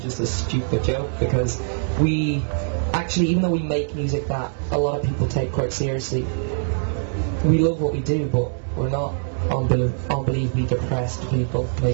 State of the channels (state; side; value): silent; left; digital silence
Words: just a stupid joke, because we actually, even though we make music that a lot of people take quite seriously, we love what we do, but we're not unbelievably depressed people